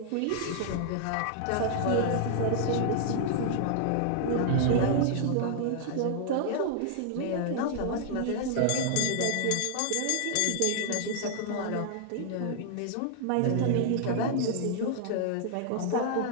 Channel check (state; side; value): different; both; correlation -0.01